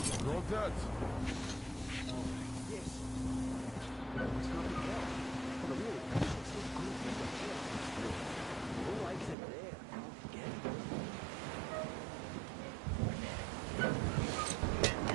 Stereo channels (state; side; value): drops out; left; at 9.3 s